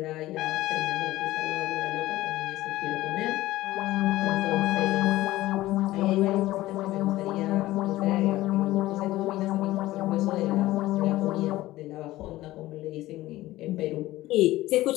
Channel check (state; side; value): quieter; right; 16.7 dB